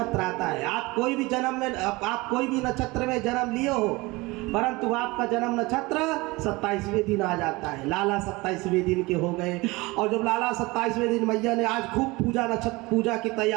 आता है। आप कोई भी नक्षत्र में जन्म लिए हो, परंतु आपका जन्म नक्षत्र 27वें दिन आ जाता है। लाला 27वें दिन के हो गए, और जब लाला 27वें दिन मैया ने आज खूब पूजा की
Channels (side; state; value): left; quieter; 22.8 dB